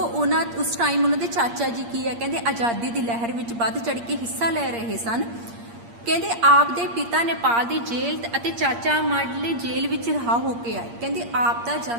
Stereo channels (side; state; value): left; late; 8.6 ms